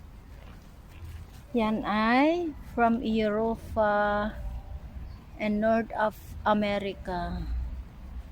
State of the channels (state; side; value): identical; both; correlation 1.00